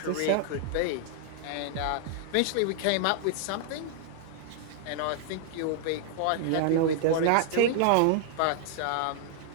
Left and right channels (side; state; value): both; different; correlation 0.00